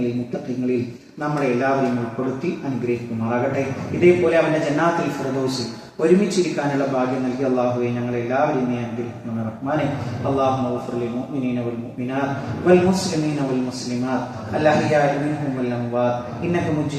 മുത്തഖീങ്ങളിൽ നമ്മളെ എല്ലാവരെയും ഉൾപ്പെടുത്തി അനുഗ്രഹിക്കുമാറാകട്ടെ. ഇതേപോലെ അവന്റെ ജന്നാത്തുൽ ഫിർദൗസിൽ ഒരുമിച്ചിരിക്കാനുള്ള ഭാഗ്യം നൽകി അള്ളാഹുവെ ഞങ്ങളെ എല്ലാവരെയും നീ അനുഗ്രഹിക്കണം റഹ്മാനെ. അല്ലാഹുമ്മ ഗ്ഫിർ ലിൽ മുഅ്മിനീന വൽ മുഅ്മിനാത്ത് വൽ മുസ്ലിമീന വൽ മുസ്ലിമാത്ത് അൽഅഹ്യാഇ മിൻഹും വൽ അംവാത്ത് ഇന്നക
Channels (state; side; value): identical; both; correlation 1.00